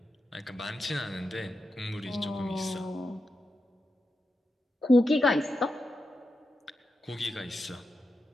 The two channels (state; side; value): normal; both; correlation 0.88